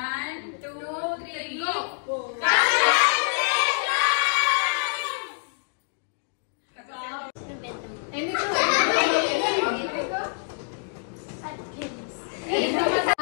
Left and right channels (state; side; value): silent; right; digital silence